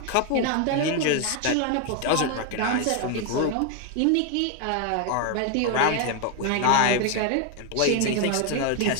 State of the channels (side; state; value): both; different; correlation 0.01